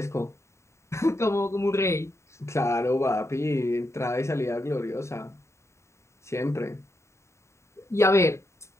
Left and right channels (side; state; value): right; late; 0.14 ms